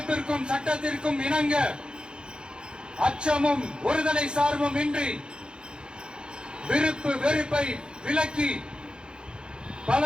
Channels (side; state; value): left; late; 0.050 ms